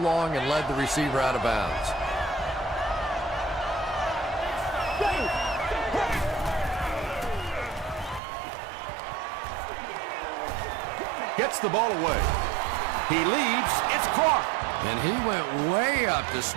and led the receiver out of bounds. Gets the ball away. He leaps. It's caught. And he went way up to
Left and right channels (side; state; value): left; drops out; at 8.2 s